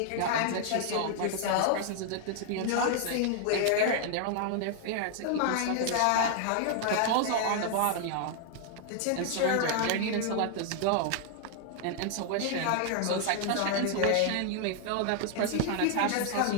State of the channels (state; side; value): different; both; correlation 0.00